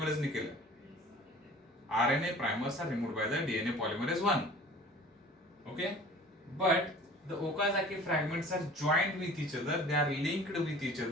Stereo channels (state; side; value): normal; both; correlation 0.45